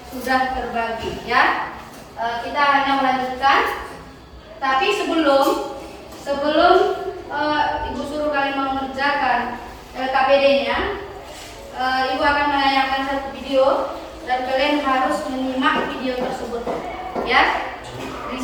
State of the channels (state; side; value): identical; both; correlation 1.00